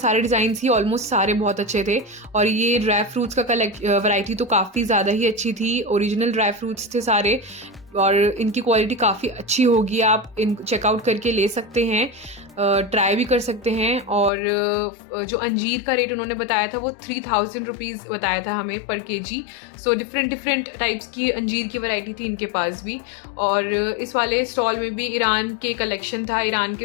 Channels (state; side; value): drops out; right; at 14.3 s